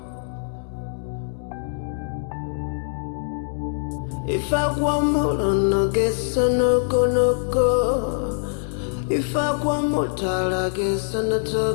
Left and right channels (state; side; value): silent; right; digital silence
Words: If I want more, no guess no go. If I want more, I guess I'm